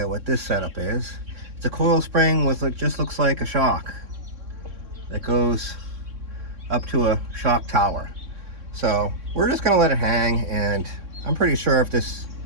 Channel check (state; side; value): late; left; 3.6 ms